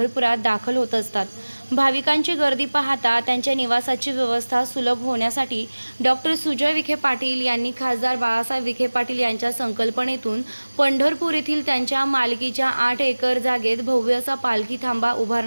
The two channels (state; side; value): inverted; both; correlation -1.00